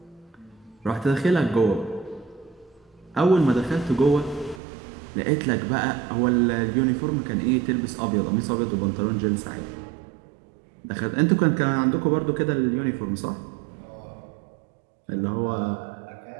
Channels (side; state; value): left; drops out; at 4.6 s